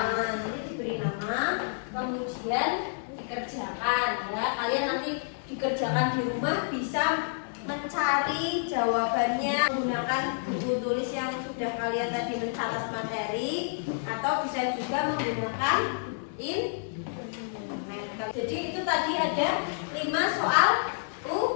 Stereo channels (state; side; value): silent; right; digital silence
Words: Jadi diberi nama, kemudian dikerjakan ya. Kalian nanti dikerjakan di rumah bisa mencari jawabannya menggunakan buku tulis yang sudah kalian tadi mencatat materi, atau bisa juga menggunakan internet. Jadi itu tadi ada 5 soal